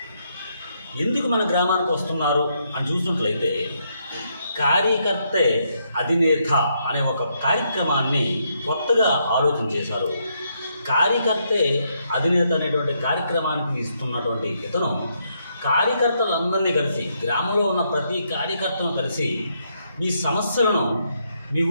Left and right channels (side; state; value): both; inverted; correlation -0.76